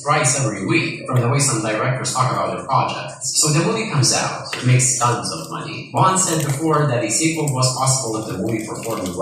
thrice every week, from the way some directors talk about their projects. So the movie comes out, it makes tons of money. Vaughn said before that a sequel was possible if the movie performed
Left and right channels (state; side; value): identical; both; correlation 1.00